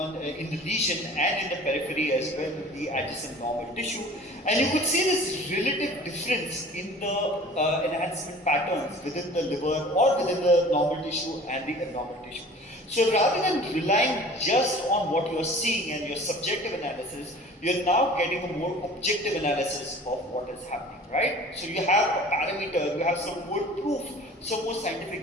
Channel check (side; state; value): both; normal; correlation 0.45